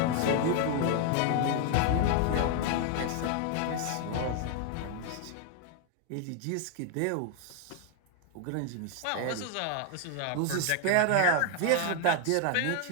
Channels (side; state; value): both; different; correlation 0.00